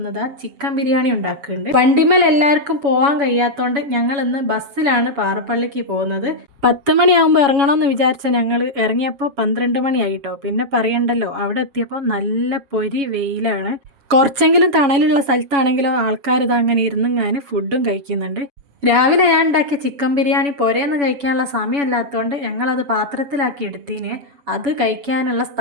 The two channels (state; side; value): late; left; 7.1 ms